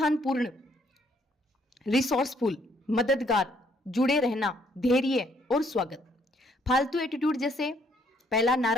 रिसोर्सफुल, मददगार, जुड़े रहना, धैर्य और स्वागत। फालतू एटीट्यूड जैसे पहला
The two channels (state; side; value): normal; both; correlation 0.67